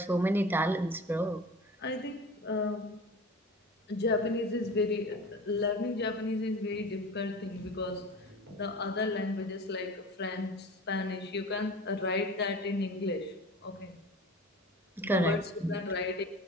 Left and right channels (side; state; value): both; normal; correlation 0.37